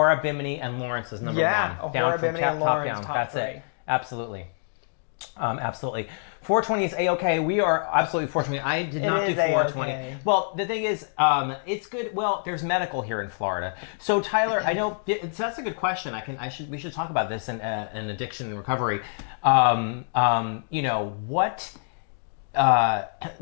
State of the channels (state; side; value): silent; right; digital silence